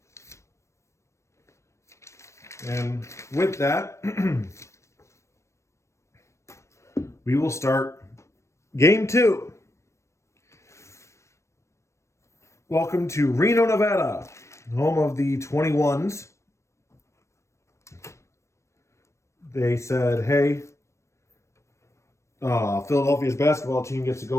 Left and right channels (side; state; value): right; late; 0.14 ms